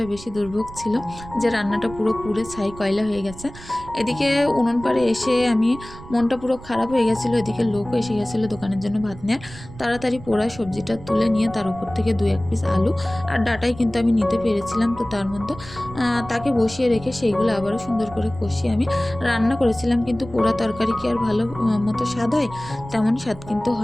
বেশি দুর্ভোগ ছিল যে রান্নাটা পুরো পুড়ে ছাই কয়লা হয়ে গেছে। এদিকে উনুন পাড়ে এসে আমি মনটা পুরো খারাপ হয়ে গেছিলো। এদিকে লোকও এসে গেছিলো দোকানের জন্য ভাত নেওয়ার। তাড়াতাড়ি পোড়া সবজিটা তুলে নিয়ে তার উপর থেকে 2-1 পিস আলু আর ডাঁটাই কিন্তু আমি নিতে পেরেছিলাম। তো তার মধ্যে তাকে বসিয়ে রেখে সেইগুলো আবারও সুন্দর করে কষিয়ে আমি রান্না করেছিলাম। কিন্তু পোড়া তরকারি কি আর ভালো মতো স্বাদ হয়? তেমন স্বাদ কিন্তু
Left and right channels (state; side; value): noise; right; rumble, 16 dB below the sound